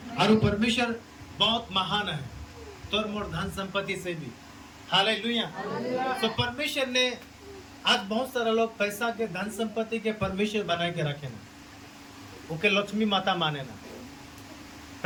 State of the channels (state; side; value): identical; both; correlation 1.00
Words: और वो परमेश्वर बहुत महान है, तोर मोर धन संपत्ति से भी। हालेलुया। तो परमेश्वर ने आज बहुत सारा लोग पैसा के धन संपत्ति के परमेश्वर बना के रखे ना, उनके लक्ष्मी माता माने ना,